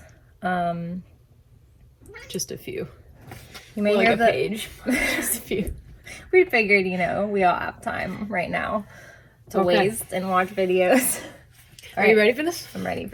Just a few. You may Like hear a the page. Just a few. We figured, we all have time right now to waste and watch videos. Are you ready for this? I'm ready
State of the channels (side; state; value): both; identical; correlation 1.00